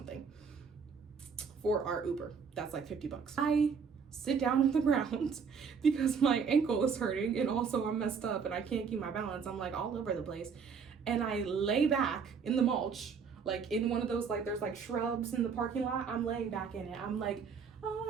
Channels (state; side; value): quieter; left; 6.0 dB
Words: for our Uber. That's like $50. I sit down on the ground because my ankle is hurting and also I'm messed up and I can't keep my balance. I'm like all over the place. And I lay back in the mulch, like in one of those, like there's like shrubs in the parking lot. I'm laying back in it. I'm like, oh